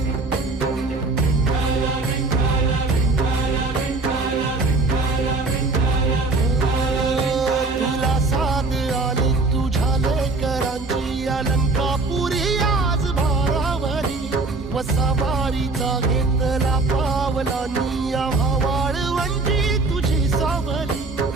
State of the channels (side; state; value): left; quieter; 3.5 dB